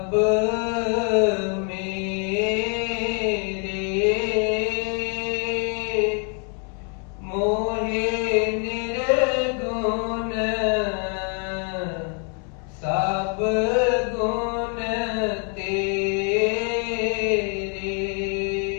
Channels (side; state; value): right; quieter; 39.7 dB